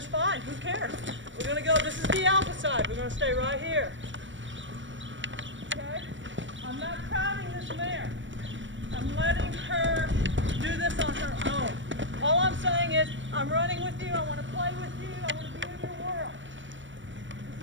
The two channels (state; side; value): late; left; 0.55 ms